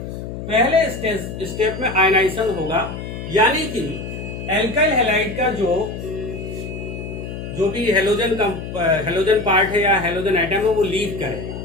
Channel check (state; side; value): noise; left; hum, 8 dB below the sound